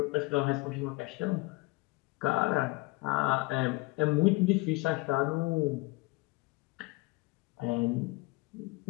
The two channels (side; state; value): right; quieter; 23.5 dB